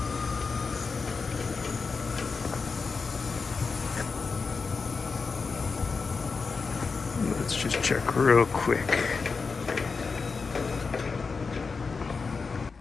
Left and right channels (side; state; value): right; quieter; 4.7 dB